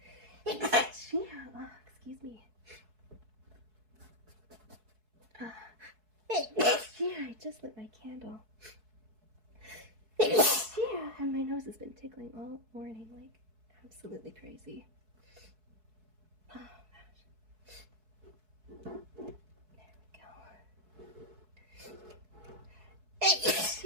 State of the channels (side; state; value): left; late; 4.6 ms